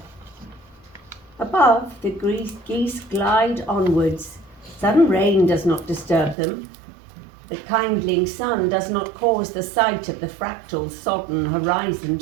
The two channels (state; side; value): drops out; left; at 6.4 s